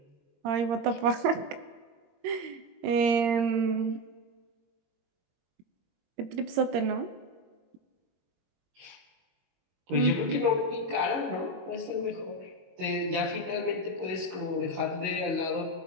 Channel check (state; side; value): late; left; 22 ms